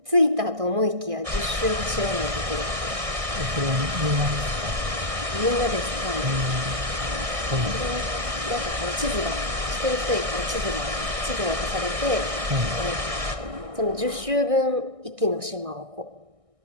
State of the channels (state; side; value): late; left; 1.6 ms